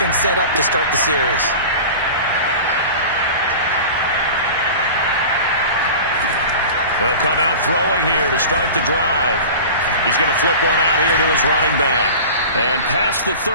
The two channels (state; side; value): inverted; both; correlation -0.35